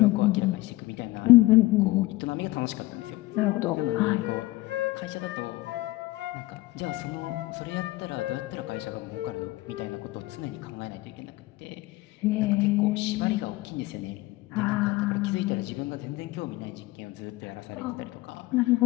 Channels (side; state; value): right; quieter; 19.5 dB